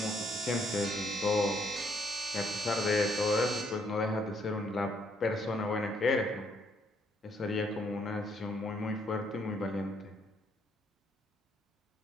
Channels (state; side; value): normal; both; correlation 0.70